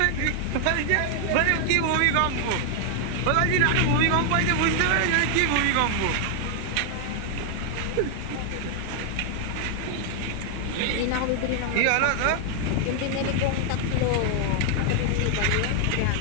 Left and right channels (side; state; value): both; different; correlation 0.00